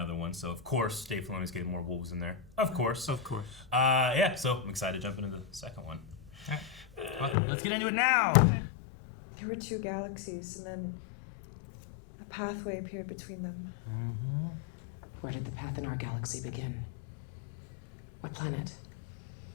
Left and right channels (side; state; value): right; drops out; at 7.4 s